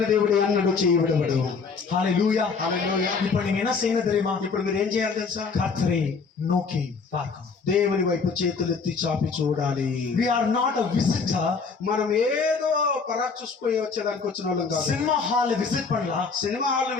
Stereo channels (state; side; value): quieter; right; 5.0 dB